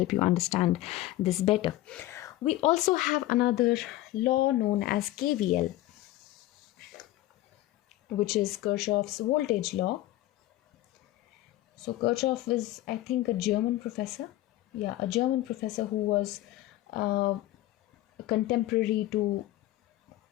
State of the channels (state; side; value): quieter; right; 15.8 dB